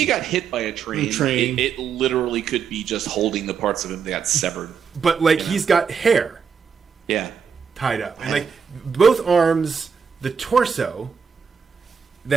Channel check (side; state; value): left; quieter; 6.4 dB